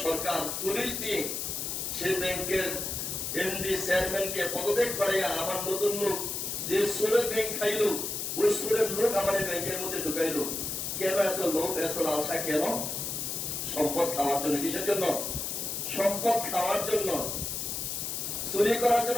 সরকার পুলিশ দিয়ে সেই ব্যাংকের এমডি চেয়ারম্যানকে পদত্যাগ করাইয়া আবার নতুন লোক, যে সুরের ব্যাংক খাইলো ওই সুরের লোক আমার ব্যাংকের মধ্যে ঢুকাইলো। কেন এত লোক, এত লালসা কেন? সম্পদ খাওয়ার জন্য। কিসের জন্য? সম্পদ খাওয়ার জন্য, চুরি করার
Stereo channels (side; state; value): left; noise; hiss, 3 dB below the sound